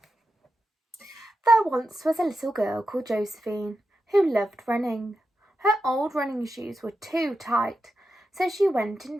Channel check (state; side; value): normal; both; correlation 0.89